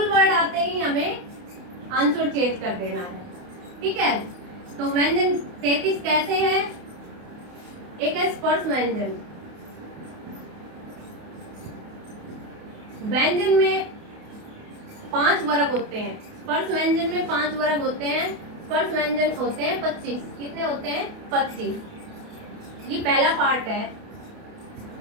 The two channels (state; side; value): late; left; 28 ms